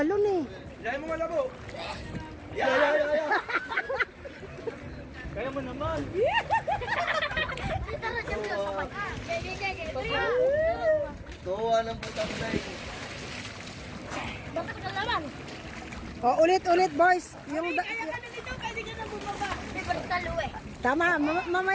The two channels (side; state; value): both; identical; correlation 1.00